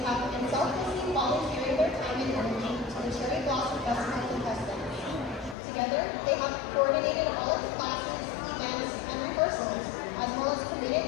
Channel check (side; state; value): right; drops out; at 5.6 s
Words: been selflessly volunteering their time and energy to the Cherry Blossom Festival contestants. Together, they have coordinated all of the classes, events, and rehearsals, as well as